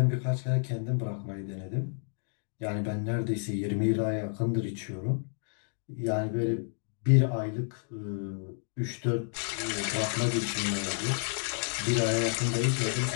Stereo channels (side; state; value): right; silent; 57 dB below the other